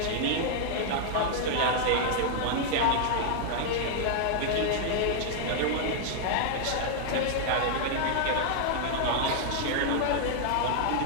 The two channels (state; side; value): different; both; correlation 0.00